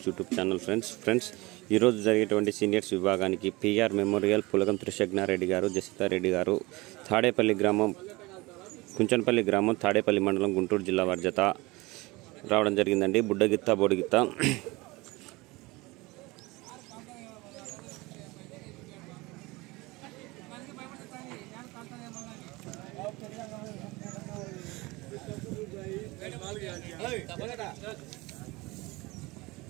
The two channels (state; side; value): quieter; left; 22.7 dB